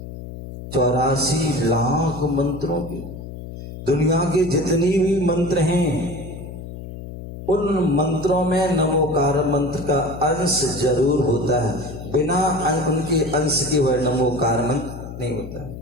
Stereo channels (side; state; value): left; noise; hum, 11 dB below the sound